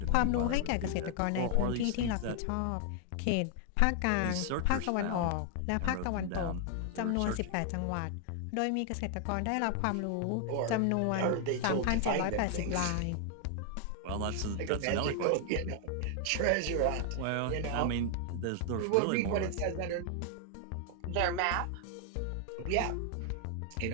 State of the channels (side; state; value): both; different; correlation 0.00